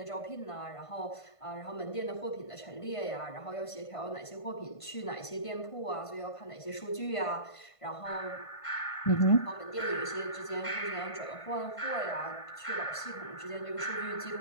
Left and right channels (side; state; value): right; late; 1.5 ms